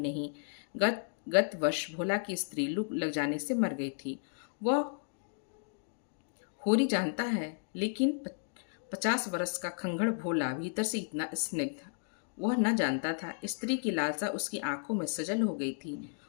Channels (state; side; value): silent; right; digital silence